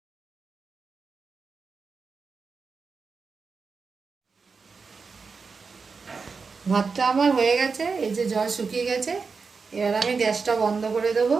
ভাতটা আমার হয়ে গেছে, এই যে জল শুকিয়ে গেছে। এবার আমি গ্যাসটা বন্ধ করে দেব,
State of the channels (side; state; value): left; quieter; 4.9 dB